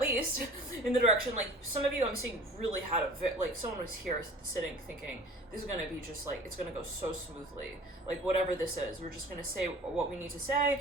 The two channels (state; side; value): normal; both; correlation 0.44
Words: in the direction, like, some of you I'm seeing really had like, someone was here sitting thinking, this is going to be just like, it's going to go so smoothly. Like, whatever this is, we're just going to say what we need to say,